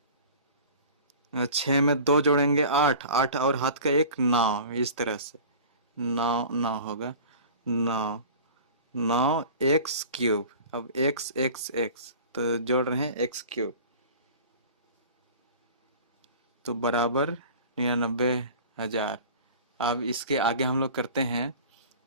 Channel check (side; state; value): both; inverted; correlation -0.41